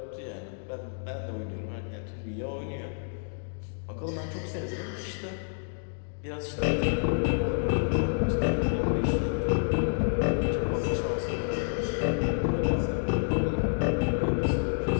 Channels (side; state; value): right; silent; digital silence